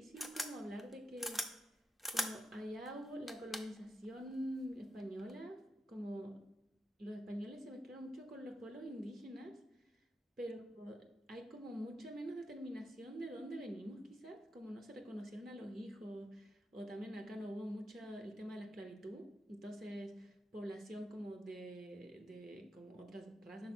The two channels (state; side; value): normal; both; correlation 0.85